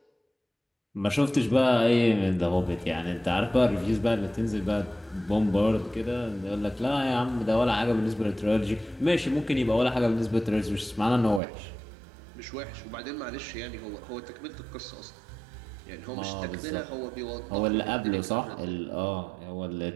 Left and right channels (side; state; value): left; drops out; at 11.4 s